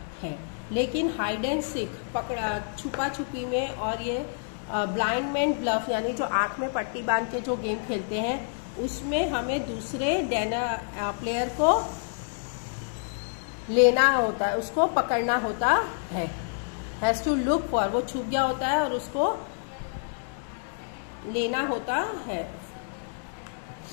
है। लेकिन हाइड एंड सीक, पकड़ा छुपा छुपी में, और ये ब्लाइंड मैन ब्लफ यानी जो आंख में पट्टी बांध के जो गेम खेलते हैं, उसमें हमें दूसरे प्लेयर को लेना होता है, उसको पकड़ना होता है। हैज टू लुक फॉर, वो छुप गया होता है और उसको लेना होता है।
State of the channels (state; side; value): silent; right; digital silence